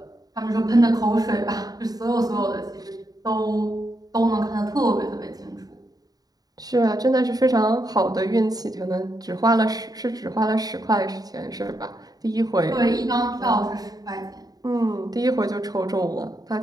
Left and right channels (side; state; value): left; late; 0.18 ms